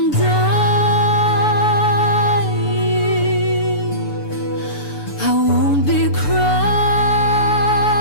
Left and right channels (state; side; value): late; right; 6.9 ms